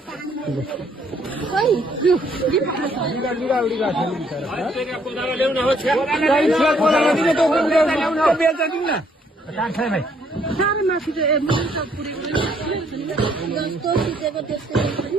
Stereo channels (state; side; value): normal; both; correlation 0.67